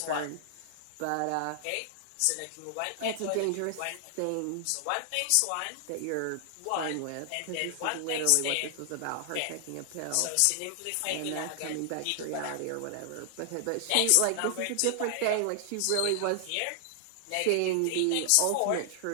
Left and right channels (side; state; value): both; different; correlation -0.01